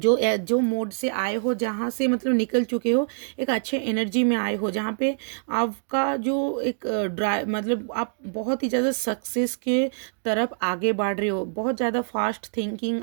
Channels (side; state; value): left; silent; digital silence